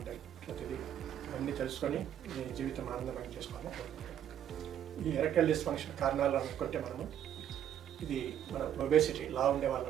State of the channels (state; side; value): quieter; left; 10.1 dB